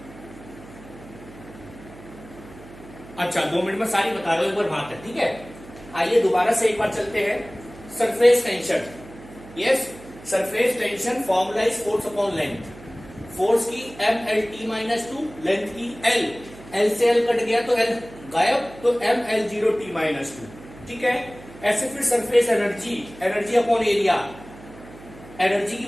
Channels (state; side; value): noise; right; hum, 19 dB below the sound